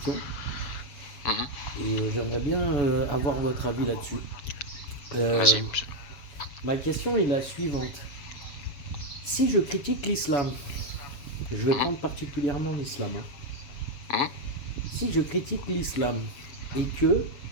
mhm. Et j'aimerais bien avoir votre avis là-dessus. Euh, Vas-y. Ma question est la suivante. Si je critique l'islam, je vais Mhm, prendre particulièrement l'islam, hein. mhm. Si je critique l'islam et que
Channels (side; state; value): right; late; 7.0 ms